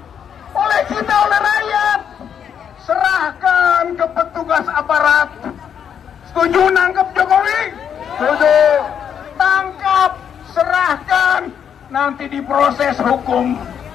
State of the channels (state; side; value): quieter; right; 8.2 dB